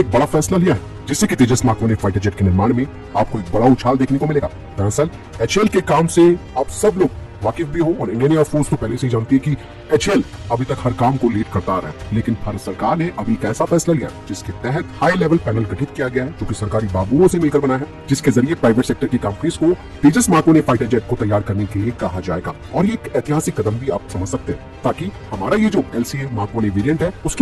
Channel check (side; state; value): both; identical; correlation 1.00